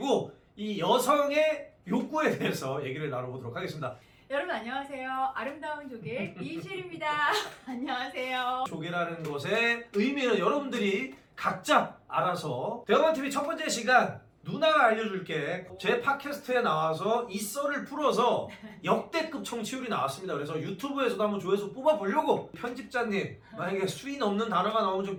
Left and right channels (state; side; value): identical; both; correlation 1.00